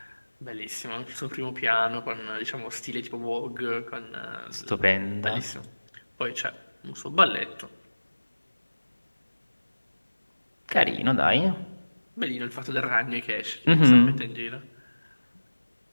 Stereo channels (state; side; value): inverted; both; correlation -1.00